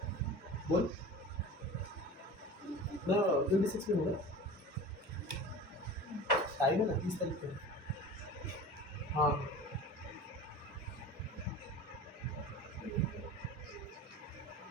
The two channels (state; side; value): normal; both; correlation 0.36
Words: बोल ना, 26 में होगा टाइम है ना, 30 तारीख को। हाँ